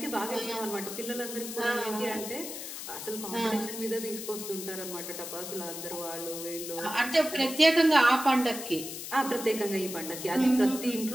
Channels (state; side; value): noise; left; hiss, 8 dB below the sound